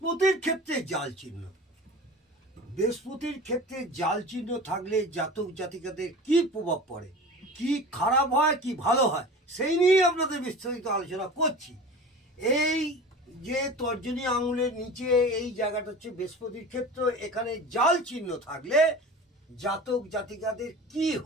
ক্ষেত্রে জাল চিহ্ন। বৃহস্পতির ক্ষেত্রে জাল চিহ্ন থাকলে জাতক জাতিকাদের কি প্রভাব পড়ে, কি খারাপ হয় কি ভালো হয়, সেই নিয়েই আপনাদের বিস্তারিত আলোচনা করছি। এই যে তর্জনী আঙুলের নিচে এই জায়গাটা হচ্ছে বৃহস্পতির ক্ষেত্র, এখানে জাল চিহ্ন থাকলে জাতক জাতিকাদের কি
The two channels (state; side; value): normal; both; correlation 0.37